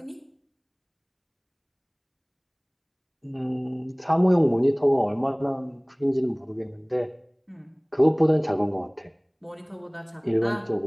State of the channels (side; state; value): both; identical; correlation 1.00